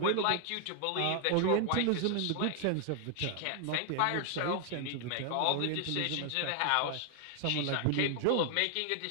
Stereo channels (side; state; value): both; different; correlation 0.00